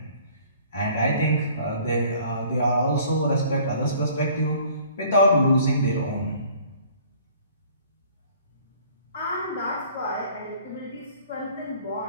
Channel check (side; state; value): both; inverted; correlation -0.54